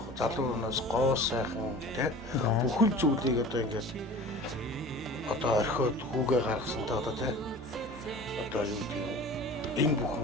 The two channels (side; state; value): both; normal; correlation 0.40